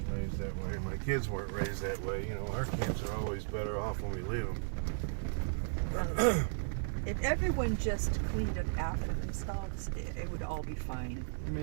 raised that way. My kids weren't raised that way. You know, our camps are always better off when we leave them. If everyone just cleaned up after themselves, it would all be fine. I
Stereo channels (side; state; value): left; silent; digital silence